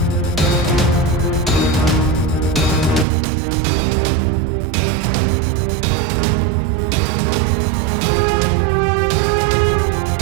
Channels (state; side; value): drops out; left; at 3.1 s